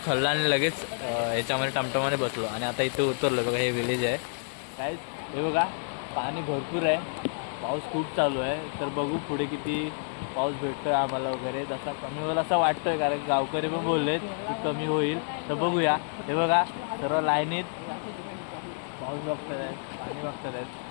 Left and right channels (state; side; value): silent; right; 59 dB below the other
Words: खल्ला आणि लगेच ह्याच्यामध्ये टमटमाने बसलो आणि आता इथे उतरलो. बघा, हे विलेज आहे काय. हे बघा, पाणी भरपूर आहे, पाऊस खूप चालू आहे. तर बघू पुढे किती पाऊस भेटतोय आम्हाला वगैरे. जसा कमी होईल असं वाटतंय, कारण गावकरी पण बोललेत की कमी होईल. तर बघूया. हे बघा, सर्व लाईनीत पाऊस बघतात आहेत, पाणी बघतात आहेत.